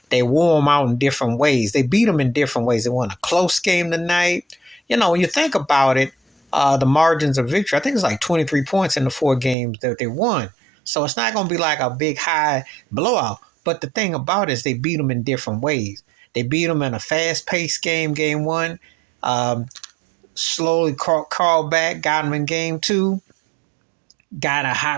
They wore them out in different ways. They beat them in different ways. They won a close game tonight. When you think about it, the margins of victory, I think it's like 23 points in the 4 games that they won. So it's not going to be like a big high blowout. But the thing about it is they beat them in different ways. They beat them in a fast-paced game 1. Slowly crawled back, got them in game 2. Got a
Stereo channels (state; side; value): drops out; left; at 9.6 s